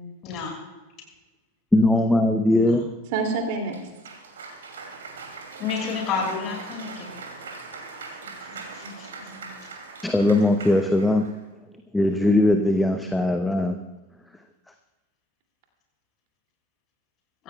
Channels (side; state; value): both; normal; correlation 0.72